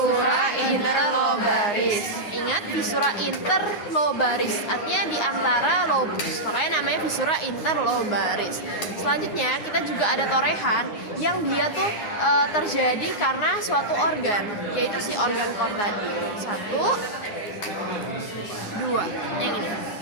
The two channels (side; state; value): right; late; 9.6 ms